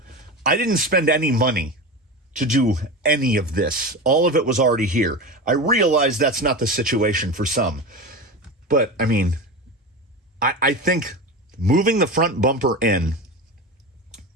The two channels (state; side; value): normal; both; correlation 0.25